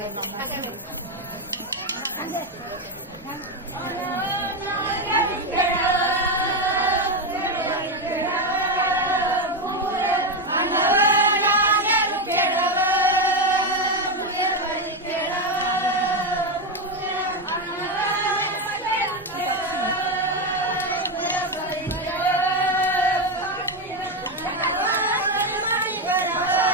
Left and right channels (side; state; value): both; normal; correlation 0.09